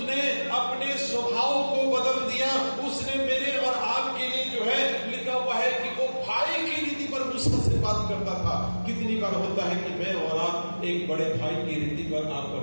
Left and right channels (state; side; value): inverted; both; correlation -1.00